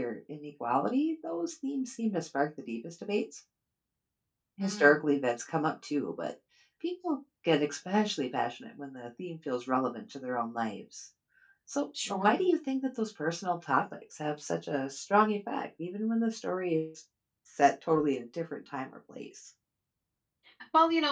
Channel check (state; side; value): identical; both; correlation 1.00